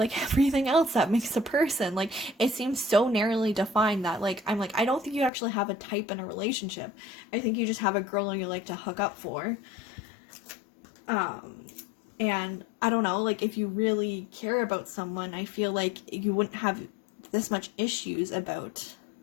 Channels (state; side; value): drops out; right; at 5.3 s